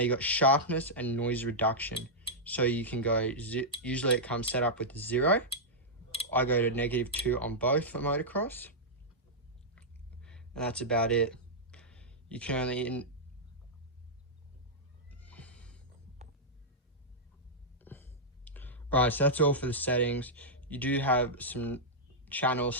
got sharpness and noise reduction. So you can go, usually it comes set up with 0. I go to -2 on both for motocross. And that's about it. You can only... Alright, so that's all for the settings. You do have some channel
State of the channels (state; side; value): normal; both; correlation -0.09